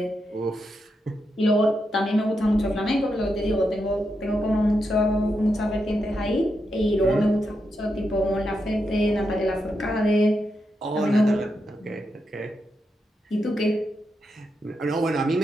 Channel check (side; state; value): both; normal; correlation 0.85